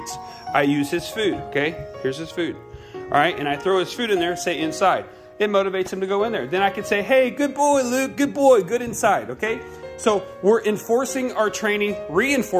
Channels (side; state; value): both; identical; correlation 1.00